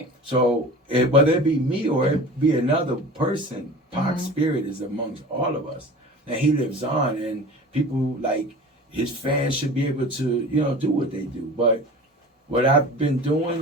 So whether it be me or it be another person, Pac's spirit is amongst all of us, and he lives on. And people like his fans should be able to, do what they do. But what I've been doing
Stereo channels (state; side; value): normal; both; correlation 0.38